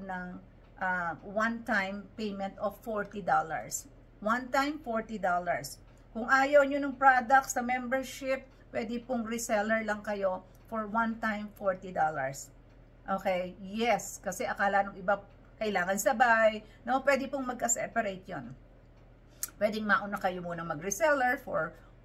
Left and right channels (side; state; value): both; identical; correlation 1.00